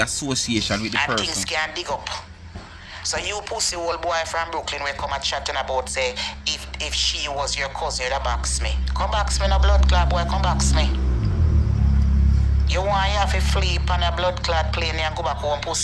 with the And person. things can dig up. So you pussy old boy from Brooklyn will come and chatting about say if she was your cousin, you'd box me. Come box me no blood clot boy, come box me. You want you have to flee on a blood clot plane and go back home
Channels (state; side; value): identical; both; correlation 1.00